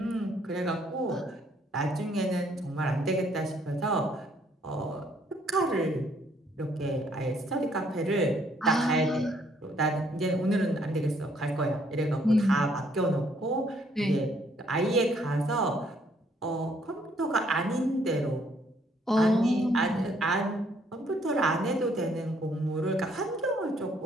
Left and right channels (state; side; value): normal; both; correlation 0.67